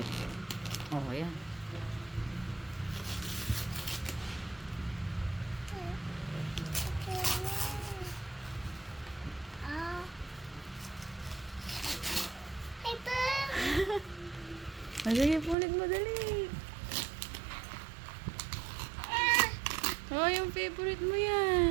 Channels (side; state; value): left; drops out; at 15.6 s